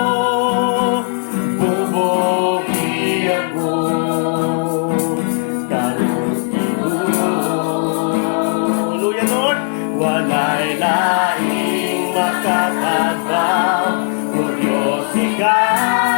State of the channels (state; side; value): silent; right; 68 dB below the other